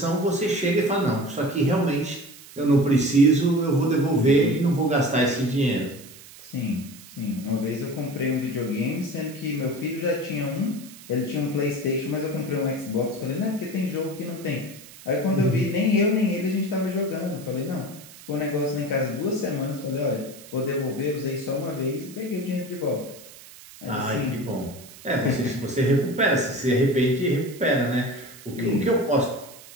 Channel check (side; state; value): right; noise; hiss, 19 dB below the sound